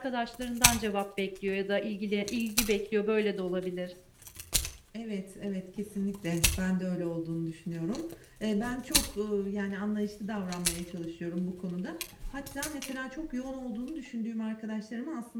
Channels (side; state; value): both; identical; correlation 1.00